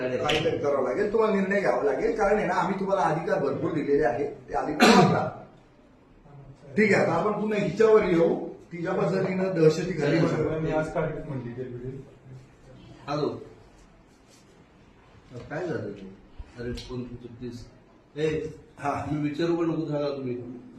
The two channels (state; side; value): identical; both; correlation 1.00